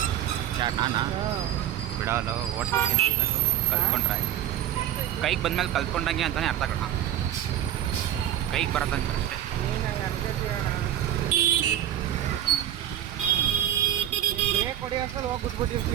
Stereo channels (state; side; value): quieter; left; 11.5 dB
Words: ಯಾರು ನಾನಾ? ಬಿಡಲ್ಲ, ಓಡಿಸ್ತೀನಿ ಅನ್ಬೇಕು. ಕಲ್ತ್ಕೊಂಡ್ರೆ ಕೈಗೆ ಬಂದ್ಮೇಲೆ ಕಲ್ತ್ಕೊಂಡಂಗೆ ಅಂತಲೇ ಅರ್ಥ ಕಣ. ಕೈಗೆ ಬರೋದಂಗೆ ಅಷ್ಟೇ. ನೀನು ಅನ್ಕೋತೀಯ ನಾನು ಬ್ರೇಕ್ ಹೊಡಿ ಅಷ್ಟಲ್ಲಿ ಹೋಗಿ